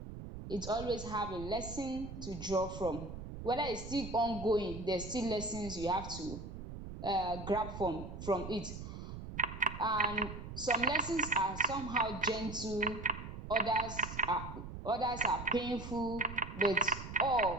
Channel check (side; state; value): right; noise; rumble, 9 dB below the sound